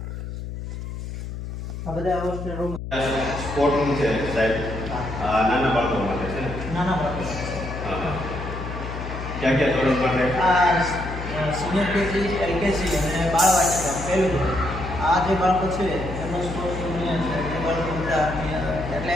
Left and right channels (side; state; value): left; noise; hum, 7 dB below the sound